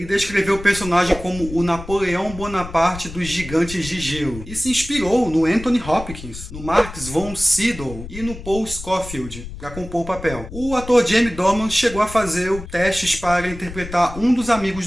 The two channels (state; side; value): noise; left; rumble, 12 dB below the sound